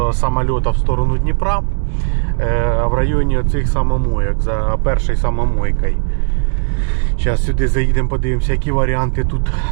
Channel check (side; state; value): left; silent; digital silence